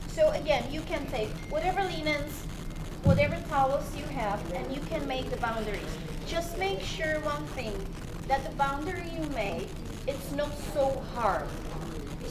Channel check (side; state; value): both; identical; correlation 1.00